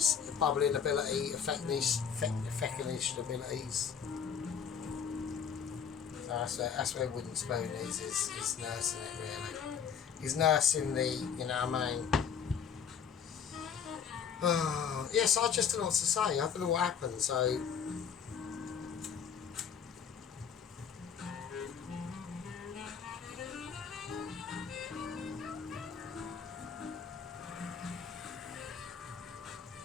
bubbling ability, effectish abilities. So that's where Wooden Spoon is. He's nursing it really. He's nursing the, you know what I mean. Yes, I just don't know what to say. I don't know what happened, so.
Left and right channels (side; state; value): right; quieter; 7.2 dB